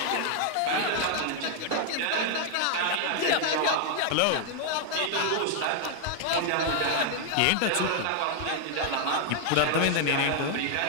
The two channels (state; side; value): different; both; correlation 0.00